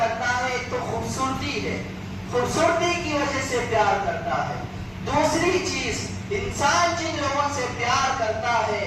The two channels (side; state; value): both; identical; correlation 1.00